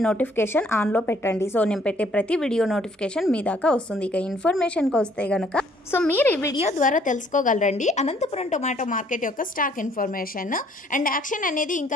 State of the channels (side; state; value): both; normal; correlation 0.63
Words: నోటిఫికేషన్ ఆన్లో పెట్టండి। సో నేను పెట్టే ప్రతి వీడియో నోటిఫికేషన్ మీ దాకా వస్తుంది। ఇక ఇన్ఫర్మేషన్కి వస్తే గనక మీరు ఈ వీడియో ద్వారా తెలుసుకోగలరండి అనంతపురం టొమాటో మార్కెట్ యొక్క స్టాక్ ఇన్ఫర్మేషన్ అండ్ యాక్షన్ అనేది